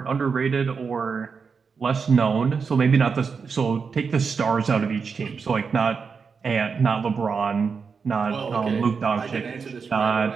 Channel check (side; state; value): left; quieter; 5.5 dB